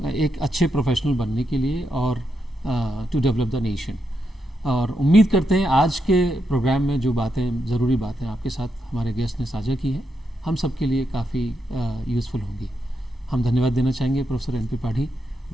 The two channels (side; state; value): both; normal; correlation 0.83